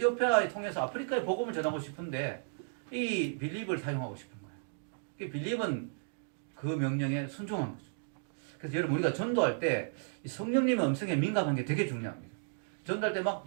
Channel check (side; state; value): left; silent; digital silence